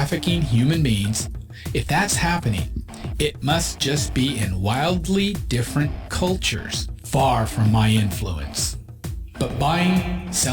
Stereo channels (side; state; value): both; identical; correlation 1.00